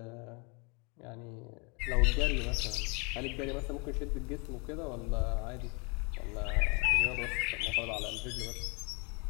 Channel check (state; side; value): quieter; right; 31.9 dB